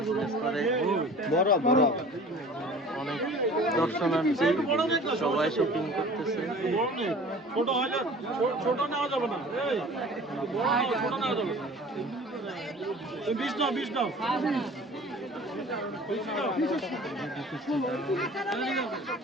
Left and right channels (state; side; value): normal; both; correlation 0.44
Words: করে অনেক দর্শনার্থী, সবাই শপিং করতেছে। ছোট নেওয়া যাবে না, ছোট নেওয়া যাবে না। 20 নাও, 20 নাও।